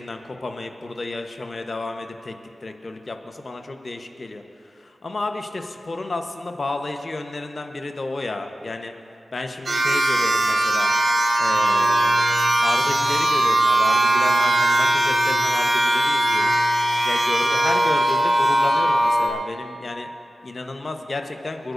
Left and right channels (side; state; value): both; normal; correlation 0.95